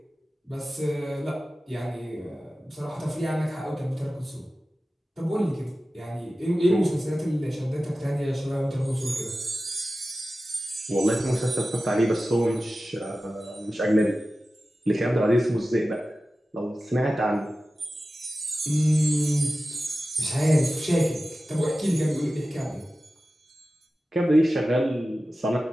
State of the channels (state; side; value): normal; both; correlation 0.95